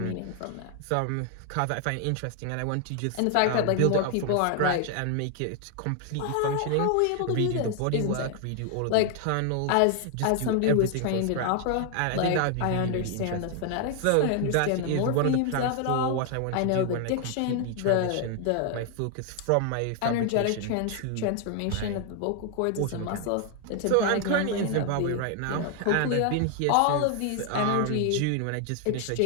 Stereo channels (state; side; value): different; both; correlation 0.00